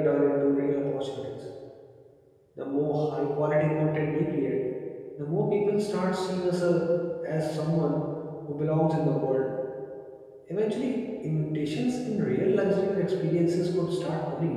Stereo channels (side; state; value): both; identical; correlation 1.00